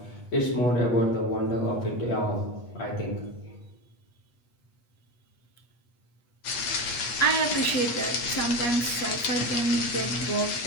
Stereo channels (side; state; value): right; late; 8.3 ms